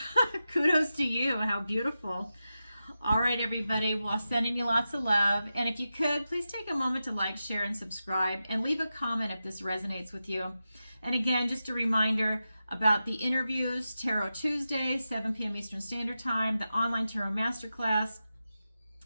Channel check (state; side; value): inverted; both; correlation -0.91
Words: Kudos to you. How beautiful. All right, everybody. Well, sending you lots of love. And if you could, please take a moment to like, share, and subscribe, and leave a comment if this resonates with you. And again, just a reminder about the interviews, Tarot Tuesday, 7 p.m. Eastern Standard Time, the online Tarot Masterclass,